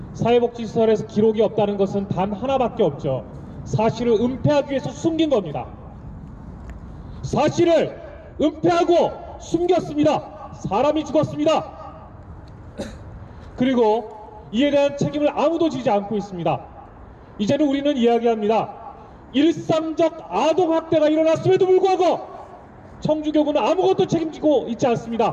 사회복지시설에서 기록이 없다는 것은 단 하나밖에 없죠. 사실을 은폐하기 위해서 숨긴 겁니다. 사실을 은폐하고 숨겼습니다. 사람이 죽었습니다. 그리고 이에 대한 책임을 아무도 지지 않고 있습니다. 이제는 우리는 이야기합니다. 일상적 아동학대가 일어났음에도 불구하고 청주교구는 아무것도 책임지고 있지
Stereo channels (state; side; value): identical; both; correlation 1.00